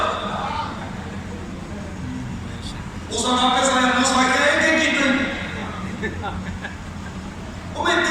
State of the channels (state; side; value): identical; both; correlation 1.00